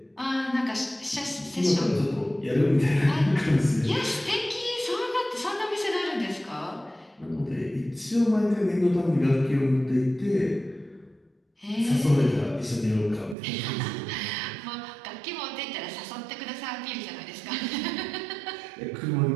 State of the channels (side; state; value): left; drops out; at 13.4 s